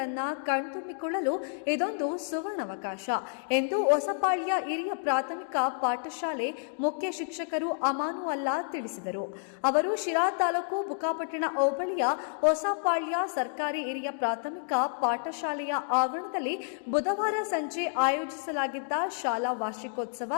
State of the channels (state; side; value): silent; right; digital silence